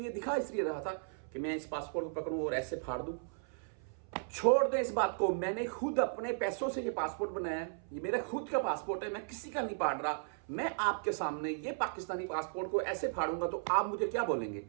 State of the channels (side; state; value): left; silent; 54 dB below the other